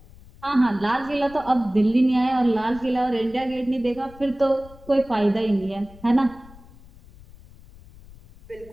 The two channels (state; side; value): noise; left; rumble, 22 dB below the sound